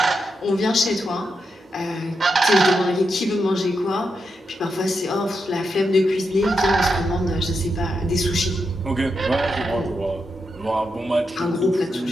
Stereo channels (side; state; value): both; normal; correlation 0.85